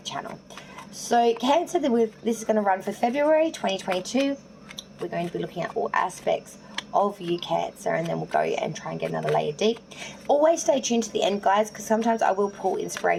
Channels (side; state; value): both; identical; correlation 1.00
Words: channel. So Cancer, this is going to run for February 2022. We're going to be looking at all aspects of you, Cancer, and then we'll go and try and get another layer deep. Always stay tuned to the end, guys, because sometimes I will pull